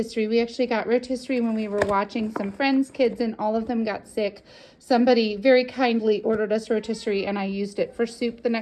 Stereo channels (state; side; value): identical; both; correlation 1.00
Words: We actually got rotisserie when we were watching some friends' kids, and all of them got sick. Somebody very kindly ordered us rotisserie, and I used it for soup the